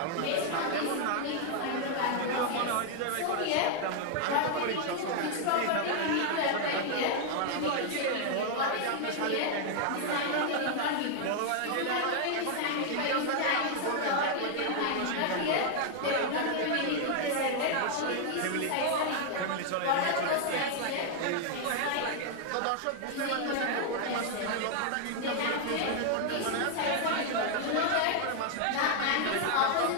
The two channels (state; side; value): different; both; correlation 0.00